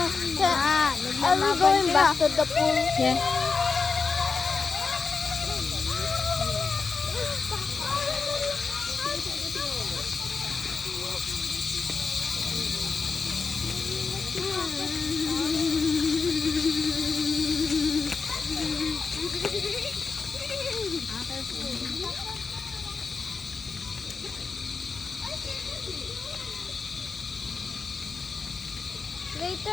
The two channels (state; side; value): quieter; right; 4.8 dB